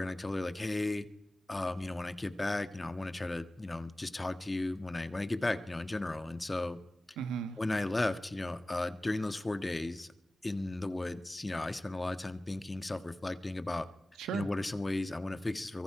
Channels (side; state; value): both; normal; correlation 0.96